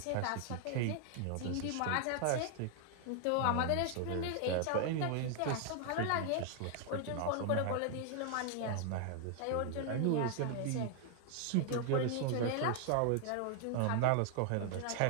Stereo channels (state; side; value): different; both; correlation 0.00